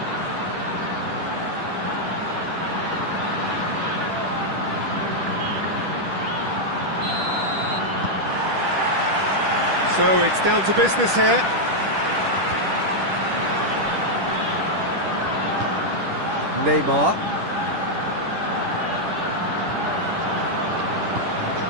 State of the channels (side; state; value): left; late; 10 ms